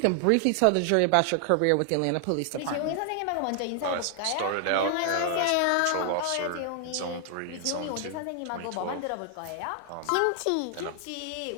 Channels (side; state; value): both; different; correlation 0.00